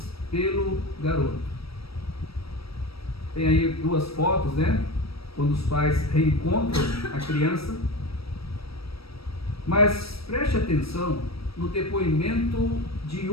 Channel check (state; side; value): late; right; 0.76 ms